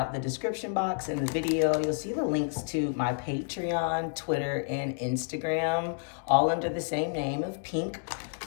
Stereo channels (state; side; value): silent; right; digital silence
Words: the description box in the video, you'll see the links to my Patreon, Twitter, and Instagram, all under the same name of Pink